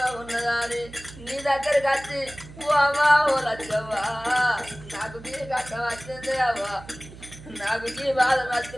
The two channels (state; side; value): noise; right; hum, 17 dB below the sound